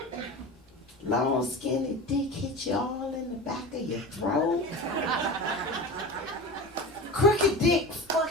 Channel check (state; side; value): normal; both; correlation 0.31